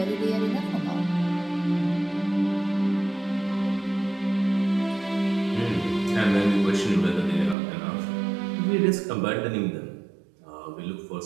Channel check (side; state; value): left; drops out; at 7.6 s